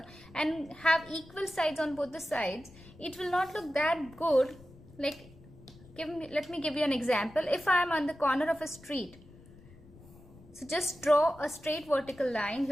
and have equal sides on both the sides, it will not look that good. Like, let me give you an example. If I am on the corner of a street, so just draw a straight vertical line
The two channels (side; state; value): left; noise; rumble, 22 dB below the sound